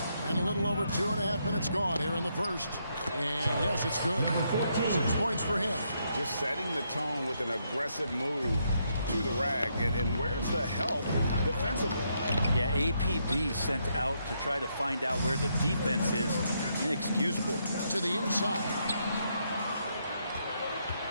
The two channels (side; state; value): both; inverted; correlation -0.77